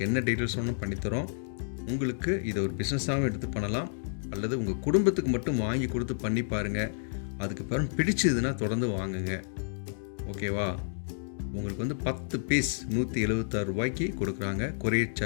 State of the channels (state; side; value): silent; right; digital silence